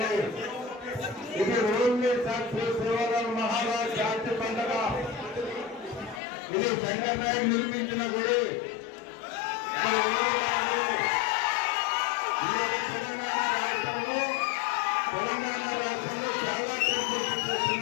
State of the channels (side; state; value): right; drops out; at 6.2 s